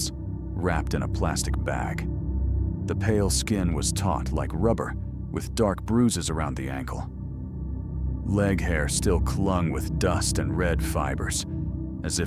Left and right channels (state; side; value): identical; both; correlation 1.00